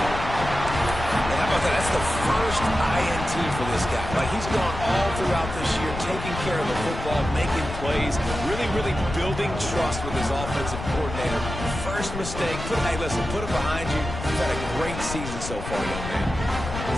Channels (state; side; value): noise; left; rumble, 7 dB below the sound